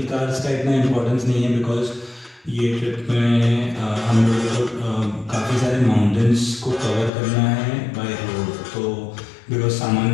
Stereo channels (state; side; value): drops out; right; at 7.1 s